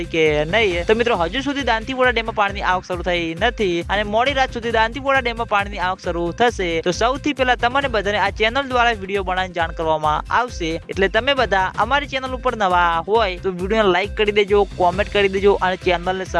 કે નહીં। તો મિત્રો હજુ સુધી દાંતીવાડા ડેમમાં પાણીની આવક શરૂ થઈ નથી અને મોડી રાત સુધી દાંતીવાડા ડેમમાં પાણીની આવક શરૂ થશે। તો સૌથી પહેલા તમને બધાને આ ચેનલ દ્વારા વિડીયો બનાવીને જાણ કરવામાં આવશે, એટલે તમે બધા અમારી ચેનલ ઉપર નવા હોય તો વિડીયોને લાઈક કરી દેજો, કોમેન્ટ કરી દેજો અને ચેનલને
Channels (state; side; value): identical; both; correlation 1.00